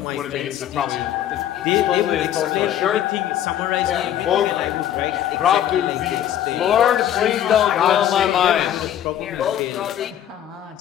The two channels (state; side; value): quieter; right; 11.1 dB